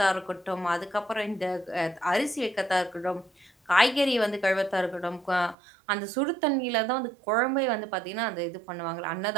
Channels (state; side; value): drops out; left; at 5.6 s